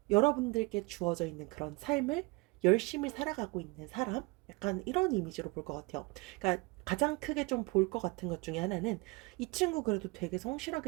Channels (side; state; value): left; quieter; 25.8 dB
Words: 여러분들께 주어져 있는 그런 삶을 열심히 살아가고 있는 사람? 약간 이런 이미지로 볼 것 같아요. 그러니까 가장 크게 좀 볼 것 같은 것 중에 하나는 이 친구 그래도 되게